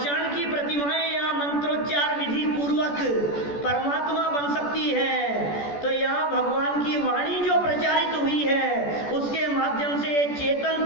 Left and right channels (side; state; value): right; late; 14 ms